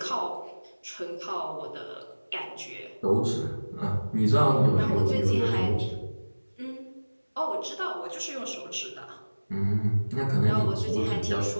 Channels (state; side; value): inverted; both; correlation -1.00